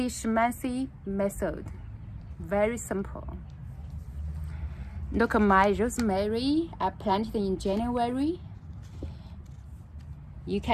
schmancy method. Very simple. Look at my rosemary. I planted in January. You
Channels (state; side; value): identical; both; correlation 1.00